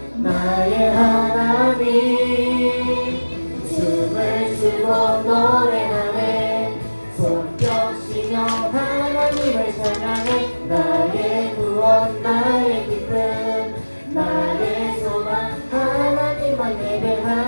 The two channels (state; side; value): inverted; both; correlation -1.00